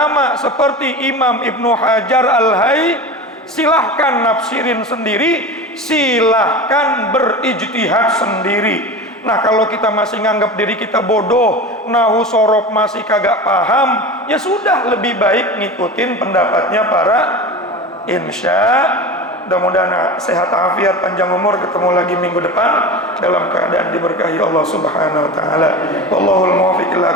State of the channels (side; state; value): both; normal; correlation 0.29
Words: seperti Imam Ibnu Hajar Al-Haythami. Silahkan nafsirin sendiri, silahkan berijtihad sendiri. Nah kalau kita masih nganggap diri kita bodoh, nahu sorof masih kagak paham, ya sudah, lebih baik ngikutin pendapatnya para insya. Mudah-mudahan sehat afiat, panjang umur, ketemu lagi minggu depan dalam keadaan diberkahi Allah Subhanahu wa taala. Wallahul muwaffiq